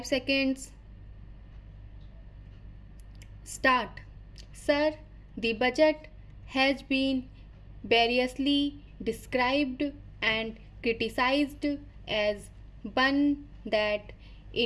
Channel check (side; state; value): both; identical; correlation 1.00